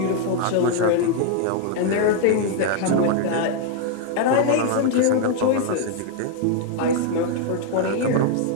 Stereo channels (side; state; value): both; different; correlation 0.00